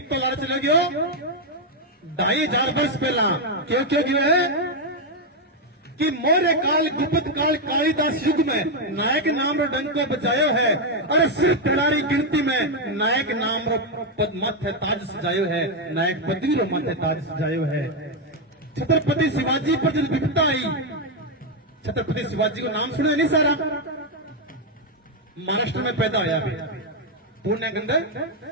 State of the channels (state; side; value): normal; both; correlation 0.02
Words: लारे चले गयो 2,500 वर्ष पहला। क्यों क्यों क्यों है कि मोरे काल गुप्त काल कालिदास युग में नायक नाम रो डंको बजायो है। अरे सिर्फ तिड़ारी गिनती में नायक नाम रो पद माथे ताज सजायो है, नायक पदवी रो माथे ताज सजायो है। छत्रपति शिवाजी पर जब विपदा आई, छत्रपति शिवाजी को नाम सुना नहीं सारा, महाराष्ट्र में पैदा होया भी पुणे के अंदर।